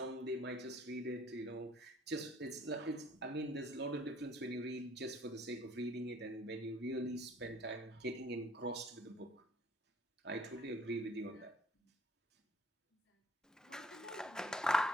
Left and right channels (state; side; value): normal; both; correlation 0.58